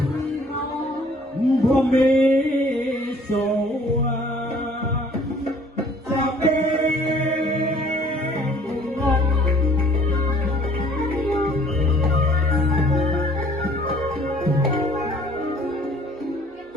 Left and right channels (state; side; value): normal; both; correlation 0.57